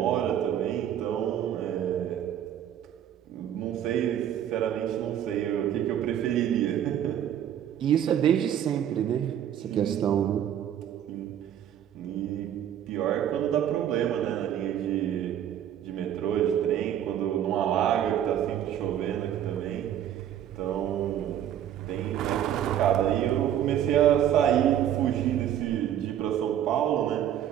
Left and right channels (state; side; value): quieter; left; 10.5 dB